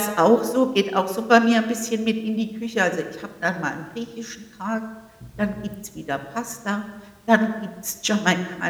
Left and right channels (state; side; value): identical; both; correlation 1.00